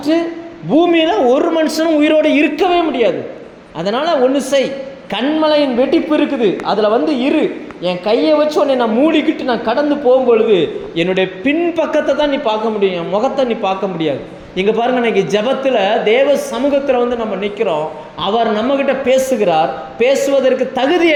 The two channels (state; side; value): identical; both; correlation 1.00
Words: பூமியில் ஒரு மனுஷனும் உயிரோடு இருக்கவே முடியாது. அதனால் ஒன்று செய், கண்மலையின் வெடிப்பு இருக்குது, அதில் வந்து இரு, என் கையை வச்சு உன்னை நான் மூடிக்கிட்டு நான் கடந்து போகும்பொழுது என்னுடைய பின்பக்கத்தை தான் நீ பார்க்க முடியும், என் முகத்தை நீ பார்க்க முடியாது. இங்கே பாருங்க, இன்னைக்கு ஜெபத்தில் தேவ சமூகத்தில் வந்து நம்ம நிற்கிறோம். அவர் நம்மகிட்ட பேசுகிறார். பேசுவதற்கு தகுதி